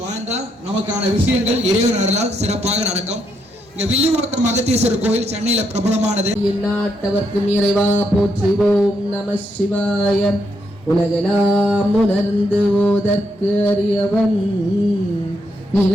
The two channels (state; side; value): normal; both; correlation 0.78